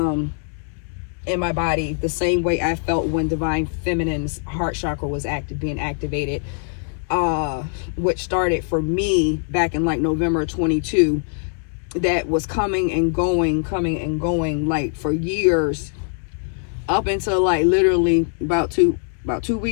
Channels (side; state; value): right; silent; 58 dB below the other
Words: in my body the same way I felt when divine feminine's heart chakra was being activated, which started for me back in like November 22. That was coming and going like for years, up until like literally about two